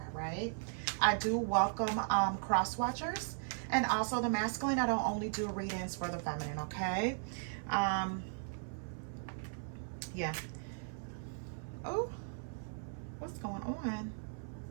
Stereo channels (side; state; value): left; silent; 53 dB below the other